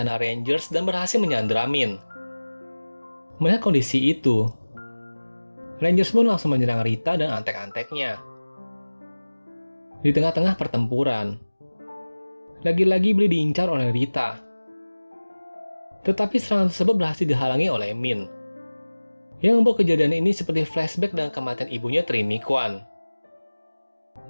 Rangers dan berhasil menyandra Min. Melihat kondisi itu, Rangers pun langsung menyerang Rita dan antek-anteknya. Di tengah-tengah pertempuran, lagi-lagi Billy diincar oleh Rita. Tetapi serangan tersebut berhasil dihalangi oleh Min, yang membuat kejadian ini seperti flashback dengan kematian ibunya Trini Kwan.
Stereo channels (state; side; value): inverted; both; correlation -1.00